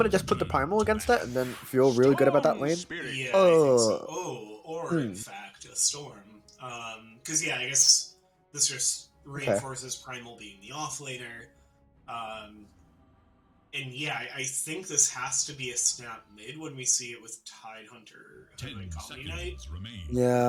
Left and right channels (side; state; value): both; identical; correlation 1.00